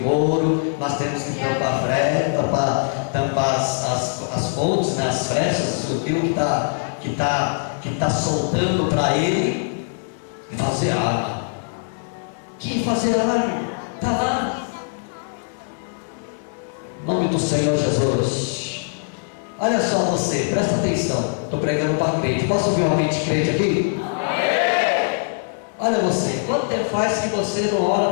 nós temos que tampar as pontes, né, as frechas, aquilo que está soltando para ele, e fazer arma. Que fazer arma? Está lá. Em nome do Senhor Jesus. Olha só você, presta atenção. Estou pregando para crente. Posso ouvir uma mente crente aqui? Olha você, quanto tempo faz que você não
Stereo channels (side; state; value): right; silent; digital silence